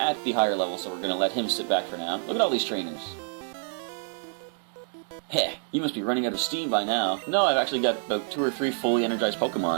the higher level, so we're going to let him sit back for now. Look at all these trainers. Heh, you must be running out of steam by now. No, I've actually got about 2 or 3 fully energized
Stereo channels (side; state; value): left; silent; 60 dB below the other